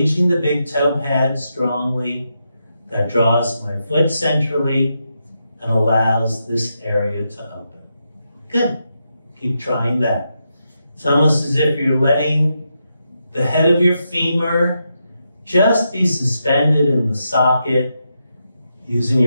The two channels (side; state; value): both; inverted; correlation -0.84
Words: the big toe pad strongly. That draws my foot centrally and allows this area to open. Good. Keep trying that. It's almost as if you're letting the head of your femur just be suspended in the socket, using